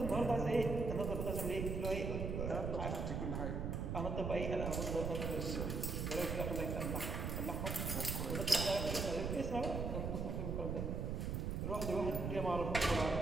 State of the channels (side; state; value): right; noise; rumble, 2 dB below the sound